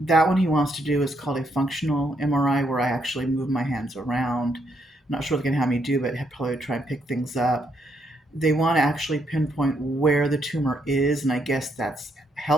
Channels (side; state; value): both; normal; correlation 0.76